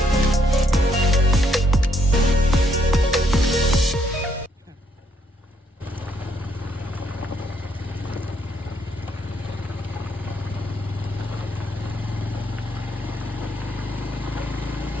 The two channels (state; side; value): normal; both; correlation 0.72